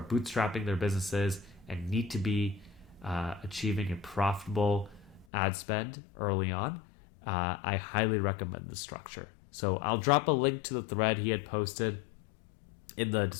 bootstrapping their businesses and need to be achieving a profitable ad spend early on, I highly recommend this structure. So I'll drop a link to the thread he had posted in the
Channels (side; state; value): right; drops out; at 5.2 s